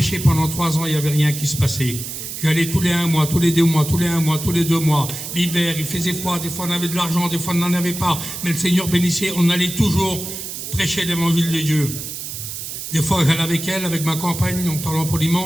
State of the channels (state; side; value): noise; right; hiss, 7 dB below the sound